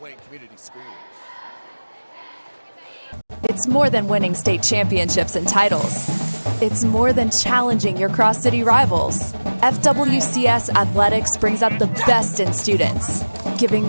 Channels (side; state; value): both; inverted; correlation -1.00